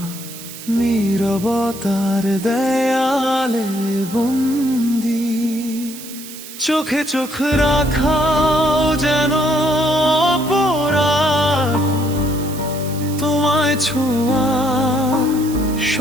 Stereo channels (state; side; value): noise; right; hiss, 14 dB below the sound